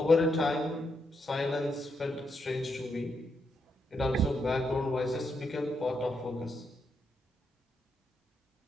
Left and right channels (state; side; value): normal; both; correlation 0.80